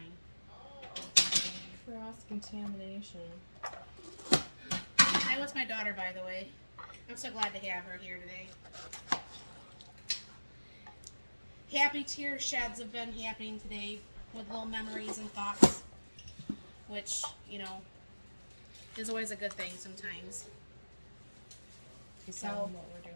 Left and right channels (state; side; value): inverted; both; correlation -1.00